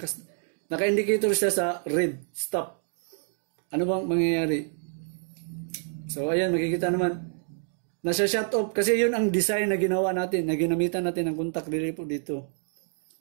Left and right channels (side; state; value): left; silent; 60 dB below the other